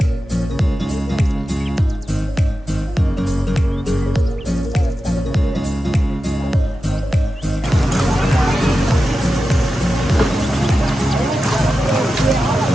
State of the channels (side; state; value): both; normal; correlation 0.92